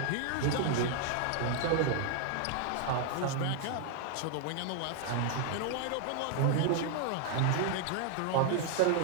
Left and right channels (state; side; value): different; both; correlation 0.00